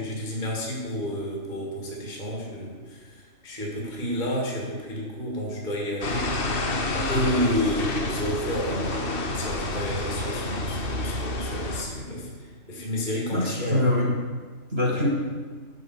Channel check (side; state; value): left; late; 2.7 ms